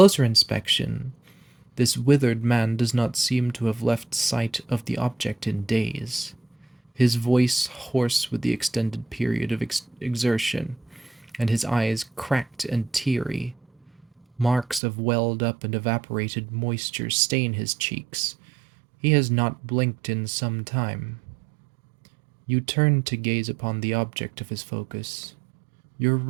inspection, this withered man does not seem to have left sight of the object in days, his voice hoarse with the extended period of exertion, and his eyes cracked and teary. Marks of welled up and evaporated moisture stain his cheeks. He has not blinked in some time. You turn to gaze upon the object of his focus, your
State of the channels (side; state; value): left; drops out; at 14.8 s